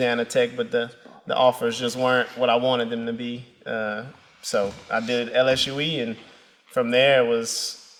Tech, but the offers just weren't what I wanted them to be. So I did LSUE, and from there it was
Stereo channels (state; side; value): identical; both; correlation 1.00